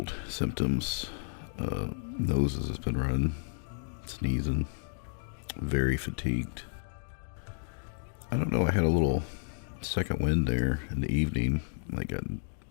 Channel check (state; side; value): silent; right; digital silence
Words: symptoms. Noses has been running, sneezing, very fatigued. I don't know, I had a little second wind there in the evening. Like I